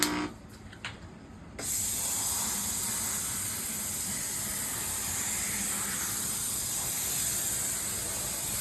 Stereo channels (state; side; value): identical; both; correlation 1.00